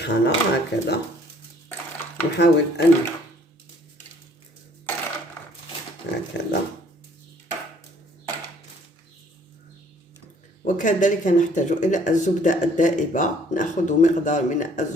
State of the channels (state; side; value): normal; both; correlation 0.59